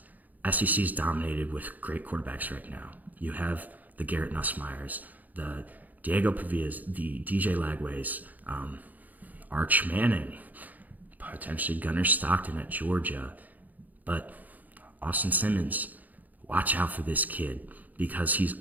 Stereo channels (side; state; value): left; late; 0.081 ms